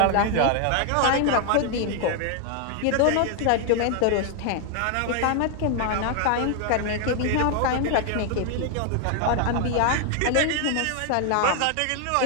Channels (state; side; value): different; both; correlation 0.00